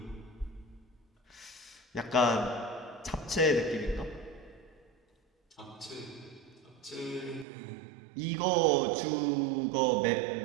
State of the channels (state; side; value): drops out; left; at 7.5 s